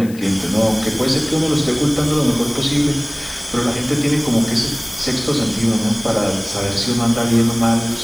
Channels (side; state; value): left; noise; hiss, 19 dB below the sound